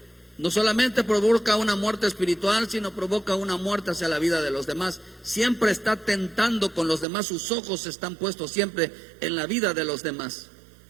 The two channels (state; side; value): drops out; left; at 7.1 s